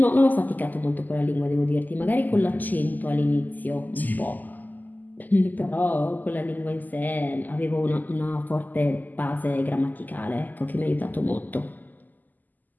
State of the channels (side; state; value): right; late; 0.084 ms